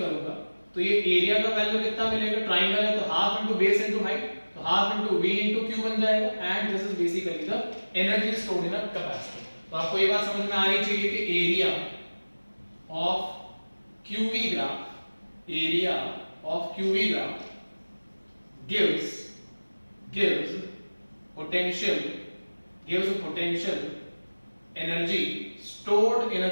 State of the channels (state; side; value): inverted; both; correlation -1.00